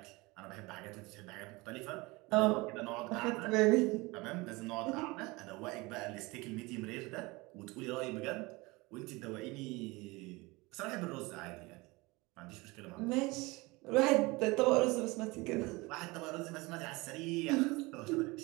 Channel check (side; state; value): left; quieter; 23.7 dB